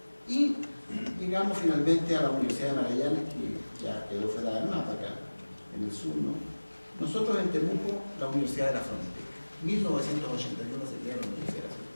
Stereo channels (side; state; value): both; inverted; correlation -1.00